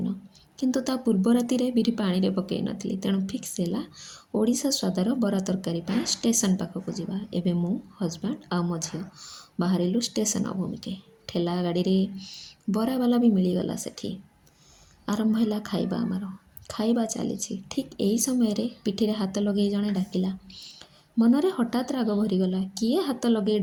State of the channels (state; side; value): identical; both; correlation 1.00